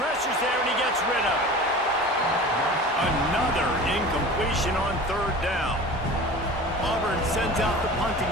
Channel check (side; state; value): both; normal; correlation 0.38